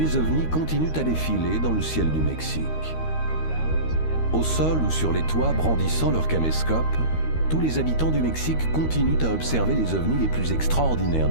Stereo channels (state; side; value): late; right; 13 ms